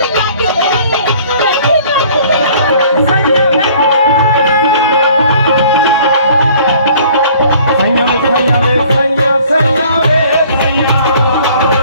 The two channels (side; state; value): both; inverted; correlation -0.53